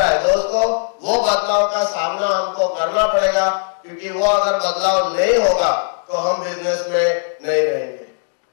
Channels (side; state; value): right; silent; digital silence